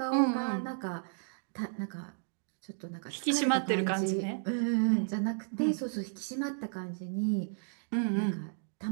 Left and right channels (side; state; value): left; silent; digital silence